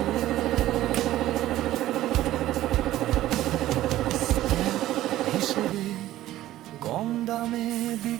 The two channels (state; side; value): quieter; left; 14.5 dB